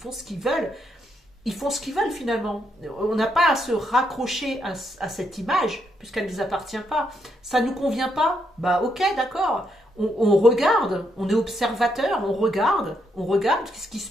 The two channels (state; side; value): normal; both; correlation 0.77